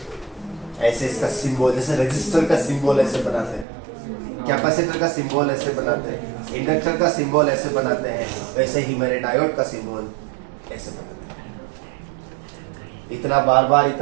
ऐसे इसका सिंबल, जैसे रजिस्टर का सिंबल ऐसे बनाते हैं, कैपेसिटर का सिंबल ऐसे बनाते हैं, इंडक्टर का सिंबल ऐसे बनाते हैं, वैसे ही मेरे डायोड का सिंबल ऐसे बनाते हैं। इतना बार बार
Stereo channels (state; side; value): drops out; left; at 3.7 s